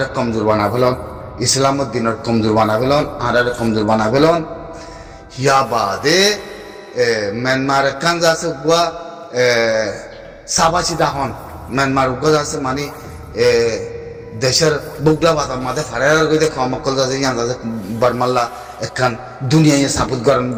কমজোর বানা ফেলন ইসলামের দিনের কমজোর বানা ফেলন আর কমজোর বানা ফেলন ইয়া বাদে মিয়ানমার কান যাচ্ছে গুয়া সাবাসি দাহন মিয়ানমার উগ্র যাচ্ছে মানে দেশের বুগলা বাতার মাঝে ফারার গিয়ে খমকল যাচ্ছে ইয়ান যাচ্ছে বারমাল্লা একখান দুনিয়ায় সাপুত গরম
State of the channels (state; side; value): identical; both; correlation 1.00